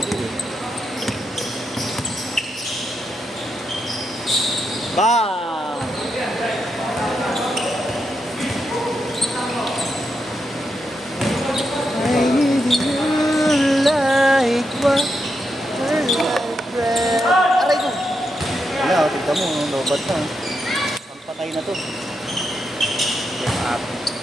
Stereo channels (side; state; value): both; normal; correlation 0.84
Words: eh. Bang! I need you like what Aray ko! Wala, tignan mo, lobat na. Ang patay na to.